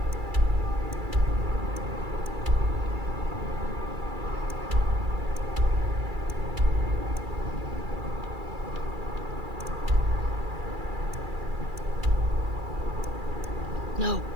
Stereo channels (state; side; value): late; left; 2.3 ms